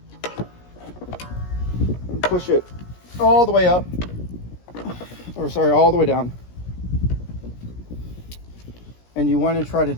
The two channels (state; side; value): late; right; 17 ms